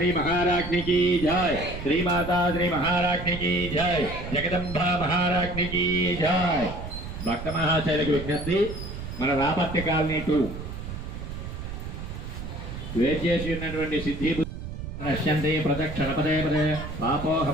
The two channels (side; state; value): right; noise; rumble, 8 dB below the sound